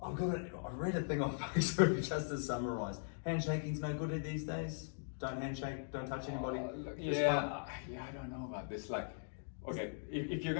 I read a thing on Facebook just to summarise. Handshaking's no good these days. Don't handshake. Don't touch anybody. Yeah, I don't know about this. Like, okay, if you're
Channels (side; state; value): right; silent; digital silence